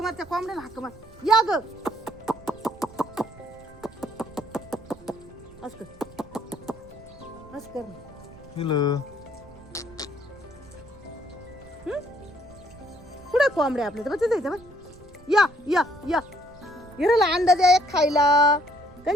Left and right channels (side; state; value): right; noise; rumble, 22 dB below the sound